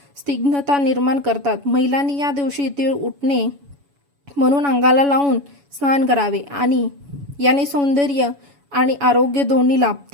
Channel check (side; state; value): left; late; 7.1 ms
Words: स्निग्धता निर्माण करतात. महिलांनी या दिवशी तीळ उठणे म्हणून अंगाला लावून स्नान करावे आणि याने सौंदर्य आणि आरोग्य दोन्ही